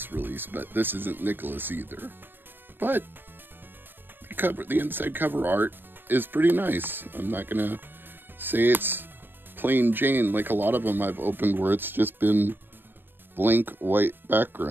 release, but this isn't Nicholas either. But the inside cover art is pretty nice. I'm not gonna say it's plain Jane like a lot of them I've opened where it's just been blank white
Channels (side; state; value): left; late; 0.096 ms